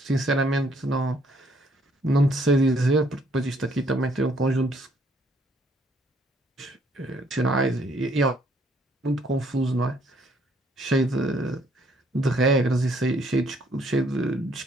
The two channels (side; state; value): both; normal; correlation 0.66